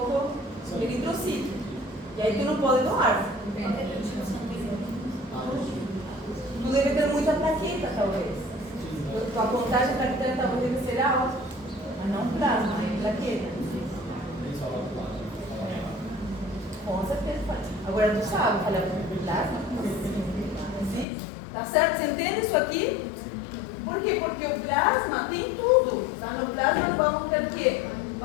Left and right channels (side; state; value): right; drops out; at 21.1 s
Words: eritrocito. E aí tu não pode doar. Tu deve ter muita plaqueta, talvez. Tua contagem plaquetária talvez deve ser alta. Mas não plasma, é plaqueta. Eles falam plasma. Com certeza. Agora tu sabe falar plasma? Sim? Tá certo? Você entende isso aqui? Por quê? Porque o plasma tem tudo. Tá? No plasma vamos ter o quê?